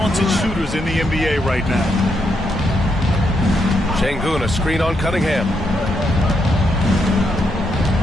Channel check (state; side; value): normal; both; correlation 0.79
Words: shooters in the NBA right now. Şengün, a screen on Cunningham.